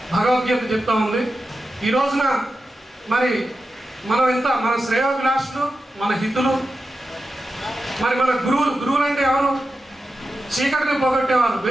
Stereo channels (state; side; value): normal; both; correlation 0.91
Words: భగవద్గీత చెప్తా ఉంది. ఈ రోజున మరి మనం మన శ్రేయోభిలాషులు, మన హితులు, మరి మన గురువులు అంటే ఎవరు? చీకటిని పోగొట్టేవారు,